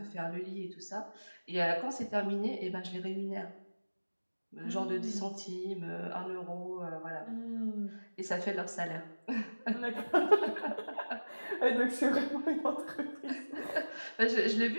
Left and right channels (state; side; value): inverted; both; correlation -1.00